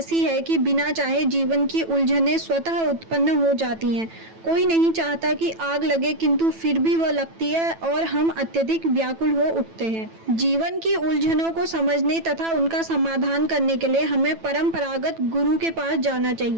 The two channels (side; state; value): left; late; 9.1 ms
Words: है कि बिना चाहे जीवन की उलझनें स्वतः उत्पन्न हो जाती हैं। कोई नहीं चाहता कि आग लगे, किंतु फिर भी वह लगती है और हम अत्यधिक व्याकुल हो उठते हैं। जीवन की उलझनों को समझने तथा उनका समाधान करने के लिए हमें परंपरागत गुरु के पास जाना